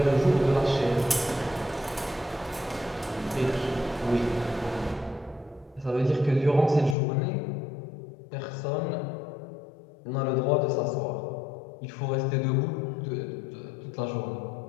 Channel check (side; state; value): right; drops out; at 7.0 s